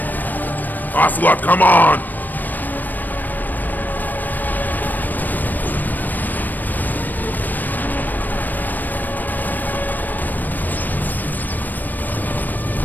Ocelot, come on!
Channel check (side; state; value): right; late; 0.088 ms